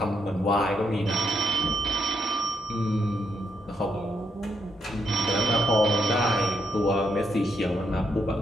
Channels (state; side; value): normal; both; correlation 0.78